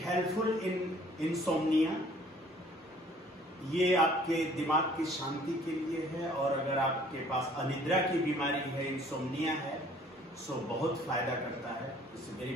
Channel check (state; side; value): normal; both; correlation 0.56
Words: helpful in insomnia. ये आपके दिमाग की शांति के लिए है, और अगर आपके पास अनिद्रा की बीमारी है, इंसोम्निया है, सो बहुत फायदा करता है। It's very